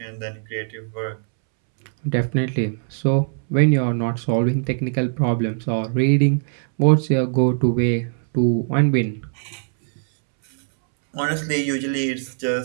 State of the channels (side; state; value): left; silent; 65 dB below the other